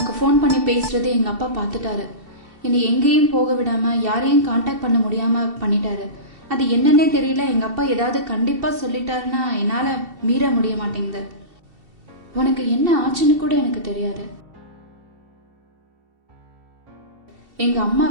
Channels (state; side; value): late; left; 2.7 ms